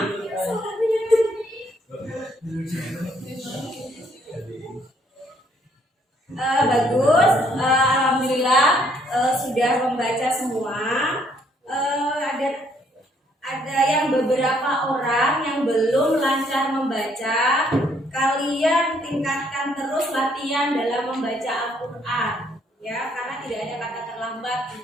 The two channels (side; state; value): both; normal; correlation 0.67